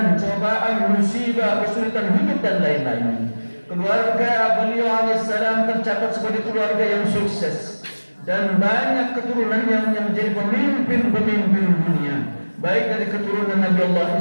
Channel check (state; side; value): inverted; both; correlation -1.00